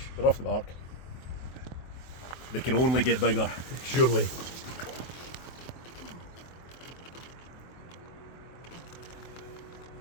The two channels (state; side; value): late; right; 23 ms